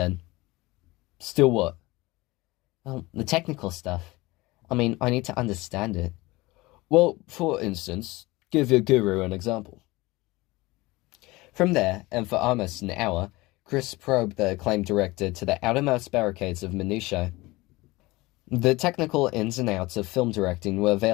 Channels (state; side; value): quieter; right; 21.2 dB